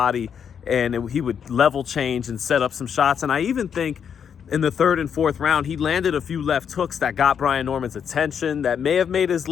and he would level change and set up some shots. And I even think in the third and fourth round, he landed a few left hooks that got Brian Norman's attention, that may have made his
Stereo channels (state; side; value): quieter; right; 7.6 dB